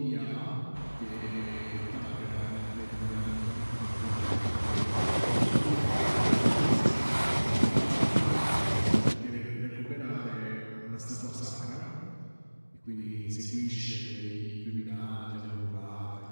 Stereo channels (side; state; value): both; inverted; correlation -1.00